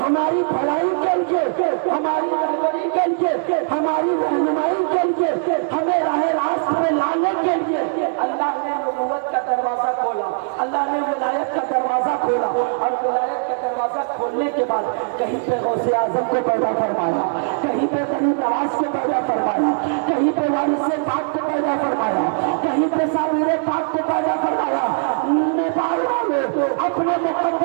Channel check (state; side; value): silent; left; digital silence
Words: हमारी भलाई के लिए, हमारी रहबरी के लिए, हमारी रहनुमाई के लिए, हमें राह रास्त में लाने के लिए अल्लाह ने नबूवत का दरवाजा खोला, अल्लाह ने विलायत का दरवाजा खोला। और विलायत का दरवाजा खोलने के बाद कहीं पे गौसे आजम को पैदा फरमाया, कहीं पे बनी नवाज को पैदा फरमाया, कहीं पे वारिसे पाक को पैदा फरमाया, कहीं पे साबिरे पाक को पैदा फरमाया। नेपाल वाले अपने